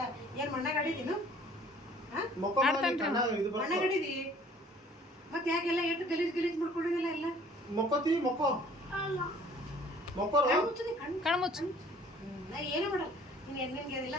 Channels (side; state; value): both; normal; correlation 0.54